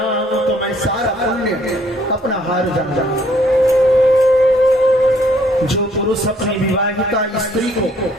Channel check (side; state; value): both; normal; correlation 0.63